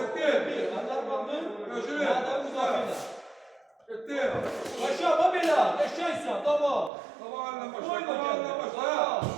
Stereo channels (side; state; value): left; drops out; at 6.9 s